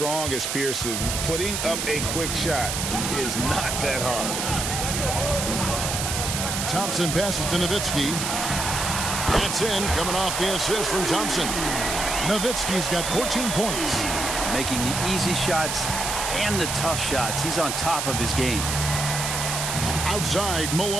as Pierce's, putting up a quick shot is not that hard. Thompson passes to Nowitzki. That's in, coming off the assist from Thompson. Nowitzki's got 14 points. Making the easy shots and the tough shots. He's on top of his game. Outside,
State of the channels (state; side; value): noise; right; hiss, 2 dB below the sound